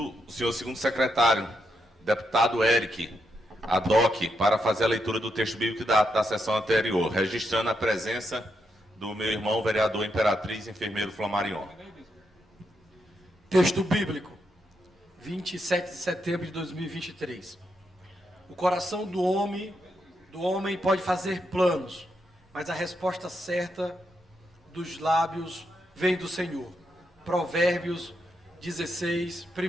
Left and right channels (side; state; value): both; normal; correlation 0.82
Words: senhor segundo secretário, deputado Eric Adoc, para fazer a leitura do texto bíblico da sessão anterior, registrando a presença do meu irmão, vereador Imperatriz, enfermeiro Flamarion. Texto bíblico, 27 de setembro de 2023. O coração do homem pode fazer planos, mas a resposta certa dos lábios vem do Senhor. Provérbios 16,